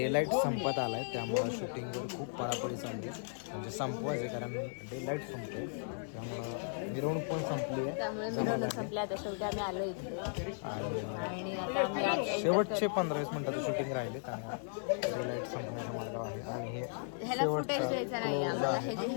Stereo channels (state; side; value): silent; right; digital silence